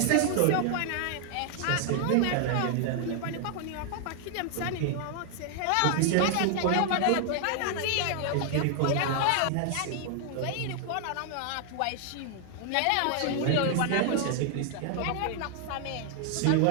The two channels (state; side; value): different; both; correlation 0.00